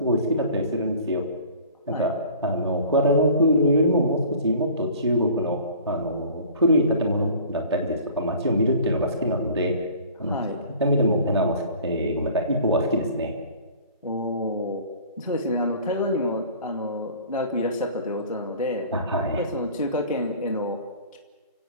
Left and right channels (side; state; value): both; inverted; correlation -0.47